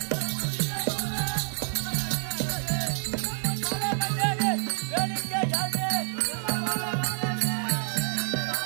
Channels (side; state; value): left; silent; 59 dB below the other